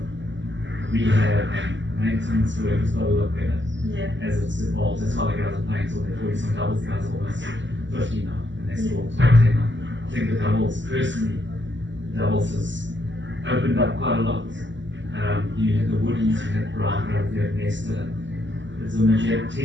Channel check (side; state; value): left; late; 0.54 ms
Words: rehab and maintenance work has got to look better as it's evolved. That's why the guys are playing till they're 40. Some doubles guys are almost 50 now, and they're still top 10 now. I think the doubles, personally, has opened up quite a lot. You had the Woodies, you had Brown, you had Nesta. You had